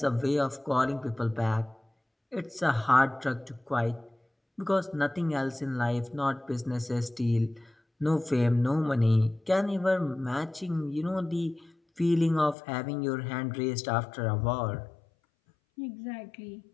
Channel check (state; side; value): drops out; right; at 12.6 s